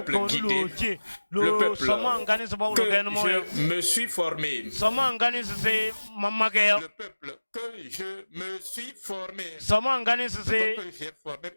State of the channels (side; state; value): both; inverted; correlation -1.00